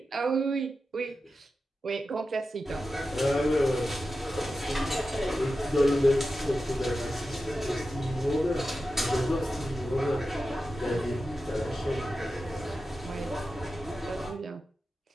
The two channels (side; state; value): both; normal; correlation 0.92